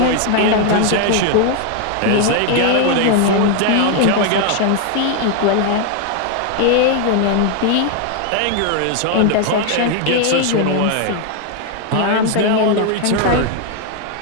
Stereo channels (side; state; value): both; different; correlation 0.00